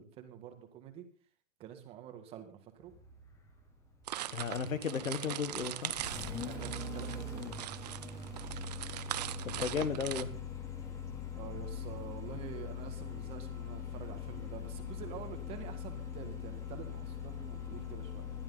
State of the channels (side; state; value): both; normal; correlation 0.02